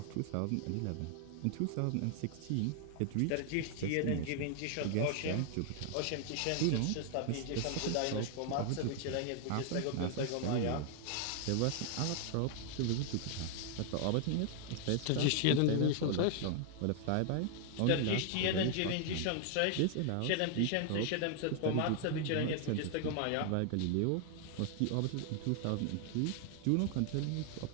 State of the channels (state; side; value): different; both; correlation 0.00